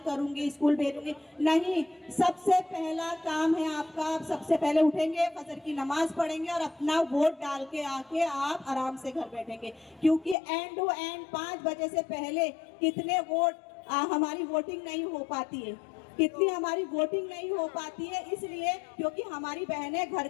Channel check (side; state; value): right; drops out; at 10.4 s